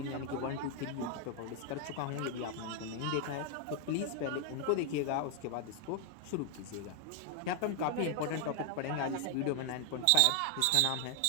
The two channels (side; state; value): both; different; correlation 0.00